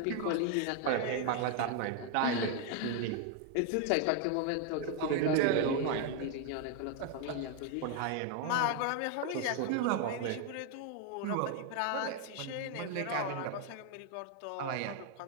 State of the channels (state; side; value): different; both; correlation 0.01